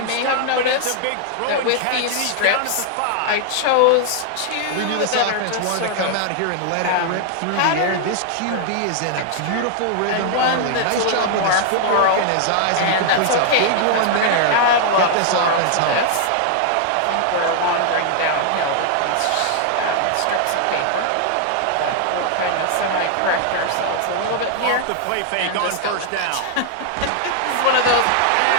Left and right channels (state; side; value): different; both; correlation 0.00